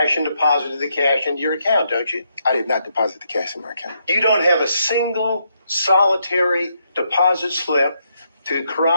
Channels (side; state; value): both; inverted; correlation -0.77